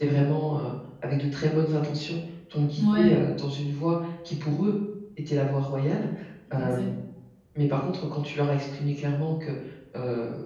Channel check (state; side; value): identical; both; correlation 1.00